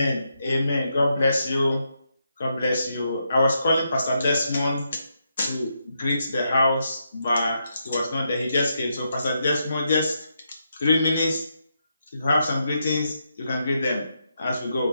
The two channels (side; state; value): both; inverted; correlation -0.82